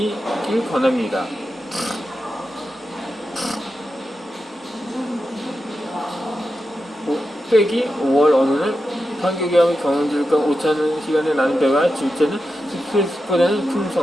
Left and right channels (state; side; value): normal; both; correlation 0.89